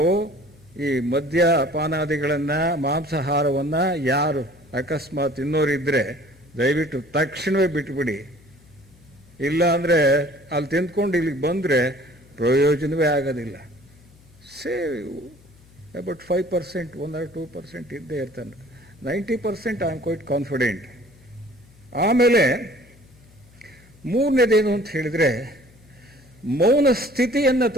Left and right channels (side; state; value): left; noise; hum, 27 dB below the sound